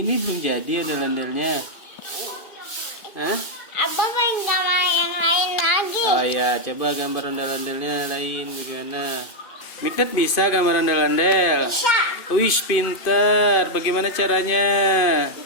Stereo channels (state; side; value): late; right; 2.5 ms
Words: belum jadi ondel-ondelnya. Hah? Abah pengen gambar yang lain lagi. Oh iya, coba gambar ondel-ondelnya lain bagaimana? Mikdad bisa gambar ondel-ondel? Bisa. Wih, pinter. Bagaimana caranya?